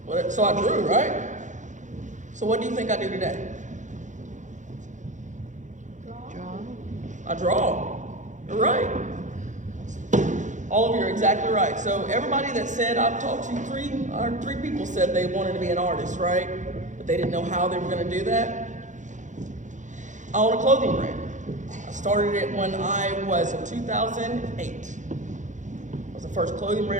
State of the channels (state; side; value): late; left; 0.36 ms